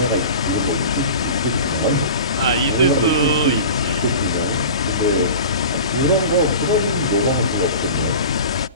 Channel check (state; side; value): inverted; both; correlation -0.36